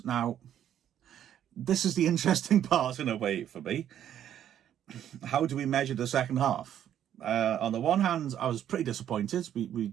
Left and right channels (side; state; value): left; quieter; 10.4 dB